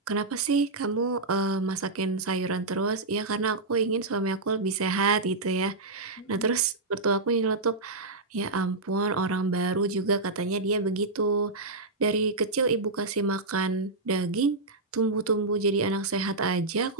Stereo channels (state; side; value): quieter; left; 3.3 dB